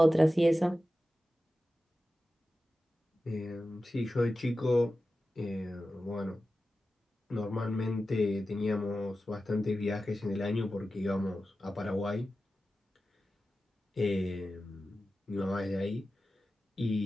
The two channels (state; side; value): normal; both; correlation 0.93